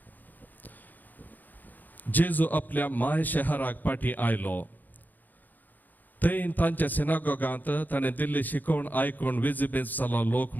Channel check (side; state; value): right; late; 0.085 ms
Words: जेजू आपल्या माय शहराक पाठी आयलो थंय तांच्या सिनागोगांत ताणें दिल्ली शिकोवण आयकून विजिबेज जालो लोक